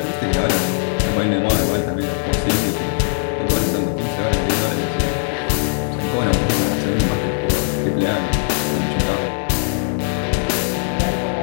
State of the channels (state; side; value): silent; right; digital silence